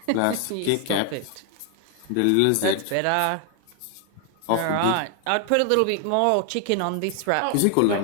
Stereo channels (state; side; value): different; both; correlation 0.00